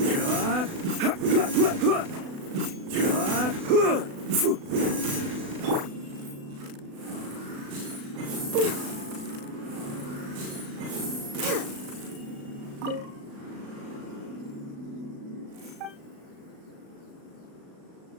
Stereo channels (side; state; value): left; late; 36 ms